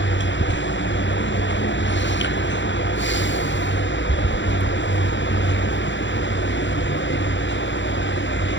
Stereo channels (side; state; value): right; late; 0.54 ms